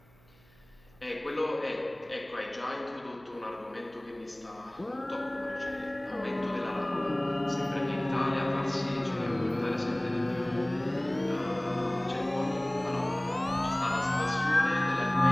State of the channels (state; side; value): noise; right; hum, 29 dB below the sound